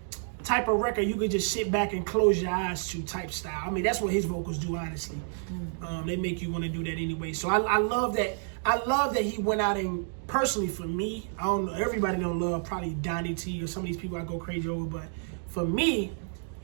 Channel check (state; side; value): silent; left; digital silence